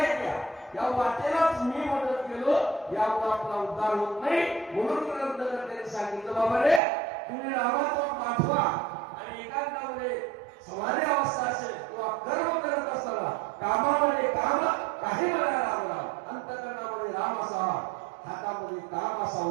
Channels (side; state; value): left; drops out; at 6.8 s